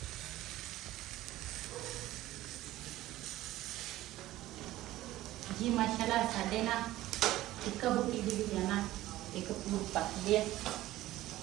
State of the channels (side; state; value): left; quieter; 15.8 dB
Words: जी माशाल्लाह साडे ना ਟਿੱਕਾ ਬੂਟੀ ਦੀ ਵੀ ਆ ਨਾ ਇੱਕ ਪੂਰ ਪੱਕਦੇ ਆ,